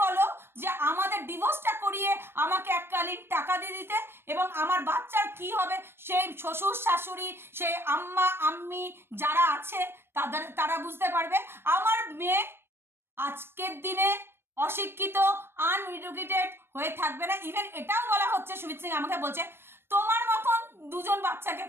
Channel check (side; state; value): left; late; 0.12 ms